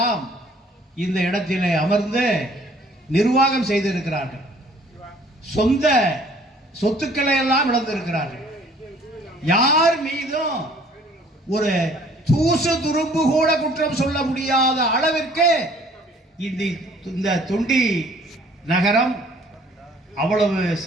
இந்த இடத்திலே அமர்ந்து நிர்வாகம் செய்திருக்கிறார்கள். சொந்த சொத்துக்களை எல்லாம் இழந்திருக்கிறார்கள். யார் மீதும் ஒரு தூசு துரும்பு கூட குற்றம் சொல்ல முடியாத அளவிற்கு இந்த தொண்டி நகரம் அவ்வளவு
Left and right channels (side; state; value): both; normal; correlation 0.56